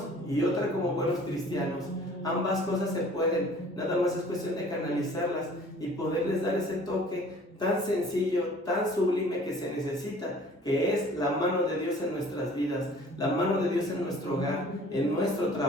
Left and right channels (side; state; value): both; normal; correlation 0.50